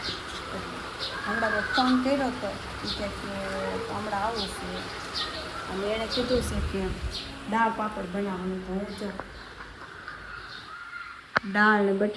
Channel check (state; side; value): identical; both; correlation 1.00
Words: હમણાં મેં ફોન કર્યો હતો કે હમણાં આવું છે, અને એણે કીધું છે કે દાળ પાપડ બનાવવાનું. તો હું જો દાળ ને